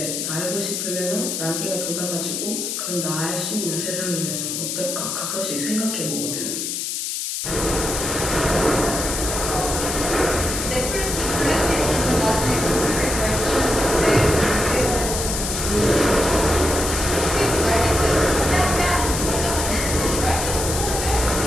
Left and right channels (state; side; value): noise; left; hiss, 3 dB below the sound